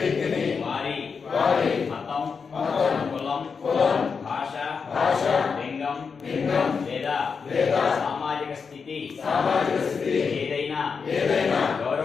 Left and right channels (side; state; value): right; quieter; 5.6 dB